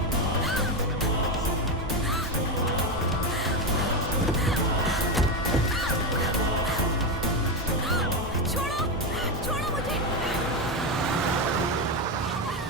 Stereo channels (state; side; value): normal; both; correlation 0.12